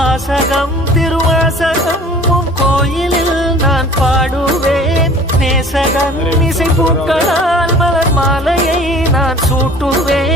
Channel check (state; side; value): normal; both; correlation 0.47